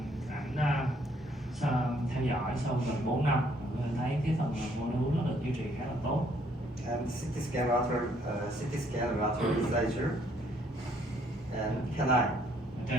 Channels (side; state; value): both; normal; correlation 0.66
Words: Ảnh theo dõi sau gần 4 năm, mình thấy cái phần mô đun nó được duy trì khá là tốt. And CT scan lateral incisor and canine. Ở